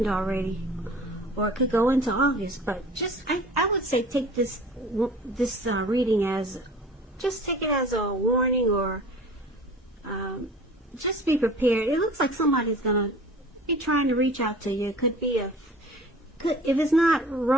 already, or it could go into August. But I would say take this reading as, just take it as a warning, or just be prepared. It looks like somebody's gonna be trying to reach out to you. It could be if it's not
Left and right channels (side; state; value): both; normal; correlation 0.43